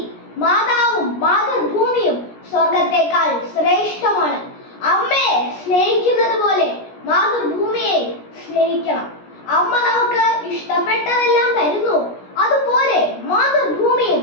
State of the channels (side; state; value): right; late; 17 ms